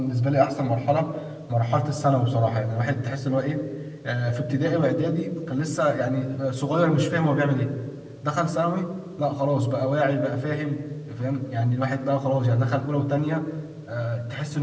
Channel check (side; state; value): both; identical; correlation 1.00